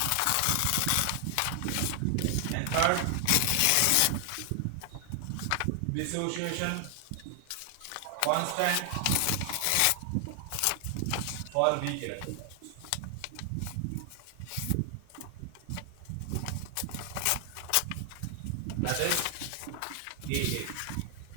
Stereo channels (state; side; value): different; both; correlation 0.00